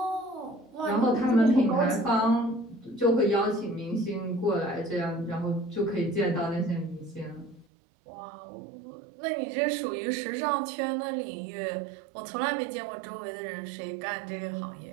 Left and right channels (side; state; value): left; drops out; at 7.7 s